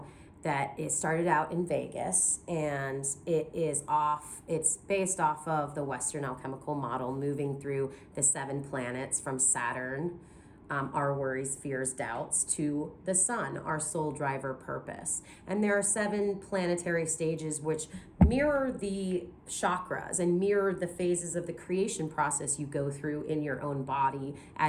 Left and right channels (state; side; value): identical; both; correlation 1.00